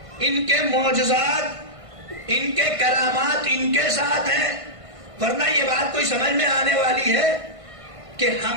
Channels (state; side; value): late; left; 1.5 ms